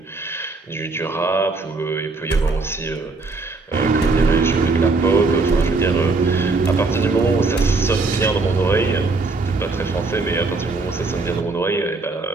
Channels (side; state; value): left; quieter; 3.7 dB